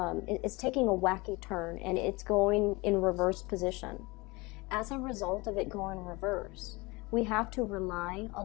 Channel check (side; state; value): right; quieter; 24.3 dB